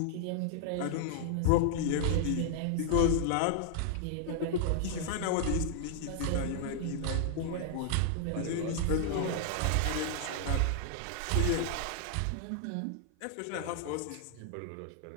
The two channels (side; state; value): both; different; correlation -0.01